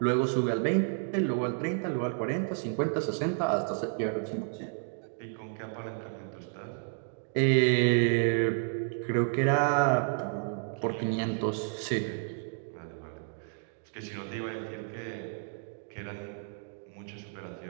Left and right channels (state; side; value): silent; left; 57 dB below the other